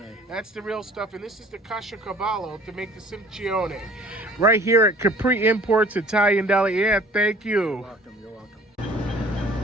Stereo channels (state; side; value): normal; both; correlation 0.50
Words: That's the real stuff. And this is the caciocavallo to make the simcione. Right here at Capri Imports Italian Deli. Yeah, thank you. You're welcome.